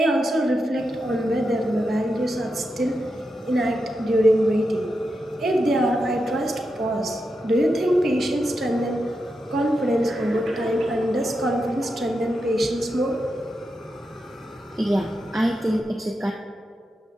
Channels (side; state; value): both; normal; correlation 0.87